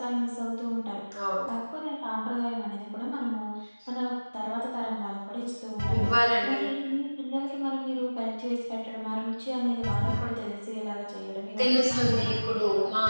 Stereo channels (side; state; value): both; inverted; correlation -1.00